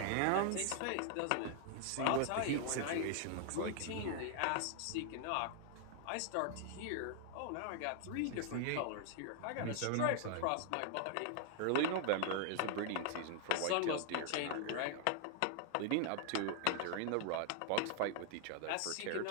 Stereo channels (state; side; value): different; both; correlation 0.00